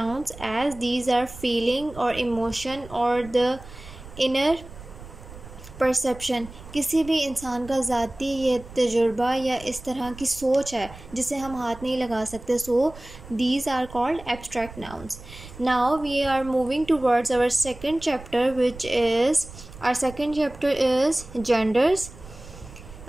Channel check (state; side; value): noise; right; rumble, 16 dB below the sound